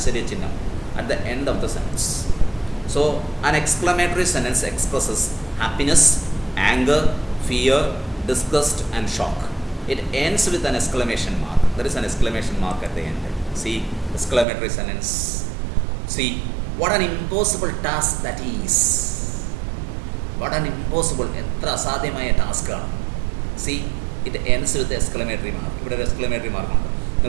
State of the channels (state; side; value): drops out; left; at 14.5 s